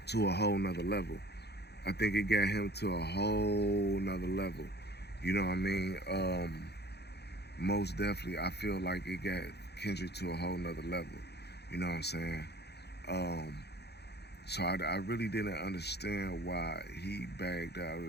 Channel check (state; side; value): late; right; 0.48 ms